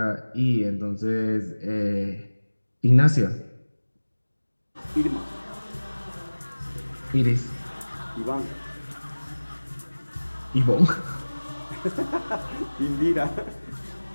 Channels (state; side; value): inverted; both; correlation -1.00